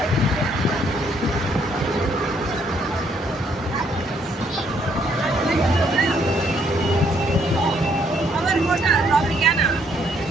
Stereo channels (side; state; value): both; normal; correlation 0.69